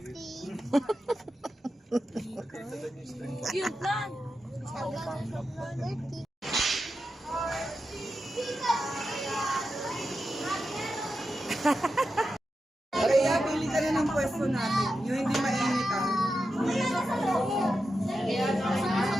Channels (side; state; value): both; normal; correlation 0.89